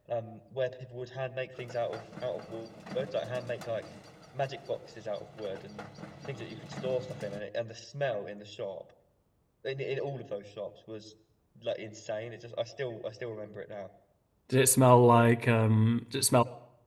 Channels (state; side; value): identical; both; correlation 1.00